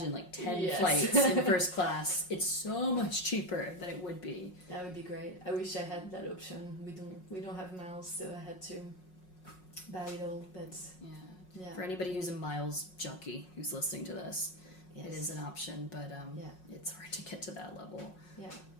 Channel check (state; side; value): late; right; 5.5 ms